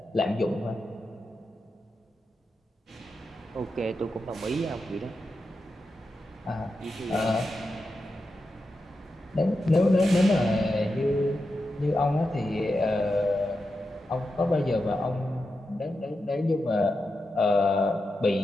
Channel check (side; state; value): both; normal; correlation 0.88